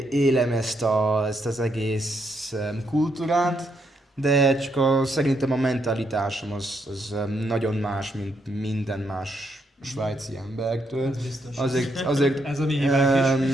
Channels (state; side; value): normal; both; correlation 0.77